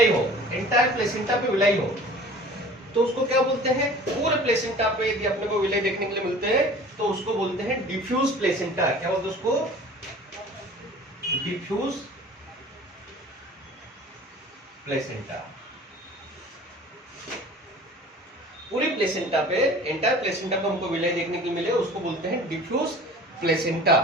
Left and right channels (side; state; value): both; normal; correlation 0.44